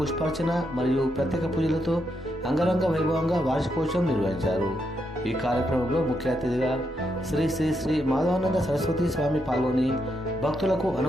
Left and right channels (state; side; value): normal; both; correlation 0.80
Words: మరియు ప్రత్యేక పూజలతో అంగరంగ వైభవంగా వార్షికోత్సవం నిర్వహించారు. ఈ కార్యక్రమంలో ముఖ్య అతిథిగా శ్రీ శ్రీ శ్రీ మాధవానంద సరస్వతి స్వామి పాల్గొని భక్తులకు